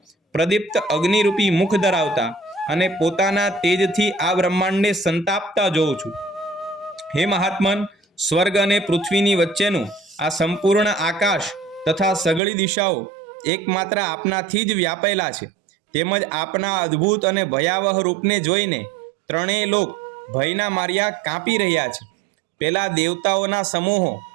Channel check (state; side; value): drops out; left; at 12.4 s